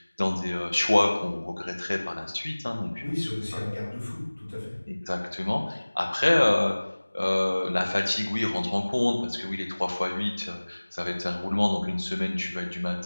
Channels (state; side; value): inverted; both; correlation -1.00